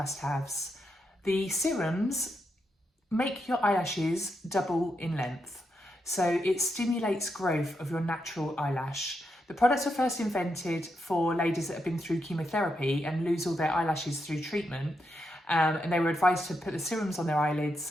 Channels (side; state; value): both; normal; correlation 0.83